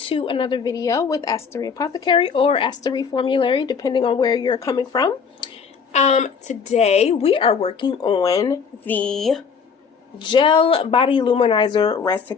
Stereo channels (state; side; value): quieter; right; 6.0 dB